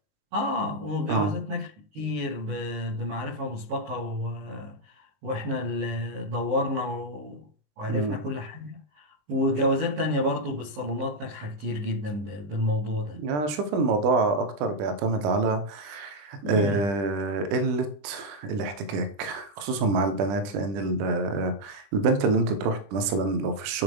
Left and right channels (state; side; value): late; left; 20 ms